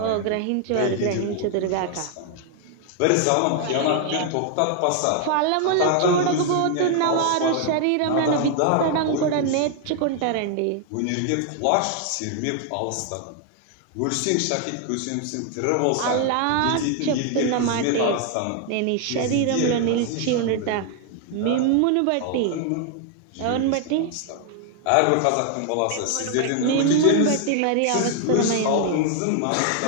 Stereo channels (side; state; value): both; different; correlation 0.00